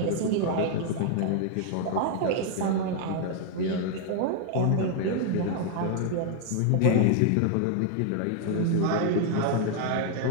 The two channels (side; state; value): both; different; correlation 0.00